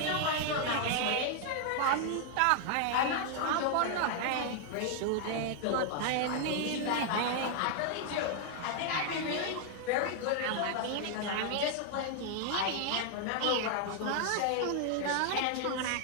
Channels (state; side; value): different; both; correlation 0.00